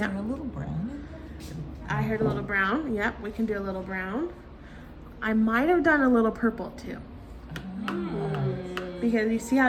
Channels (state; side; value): identical; both; correlation 1.00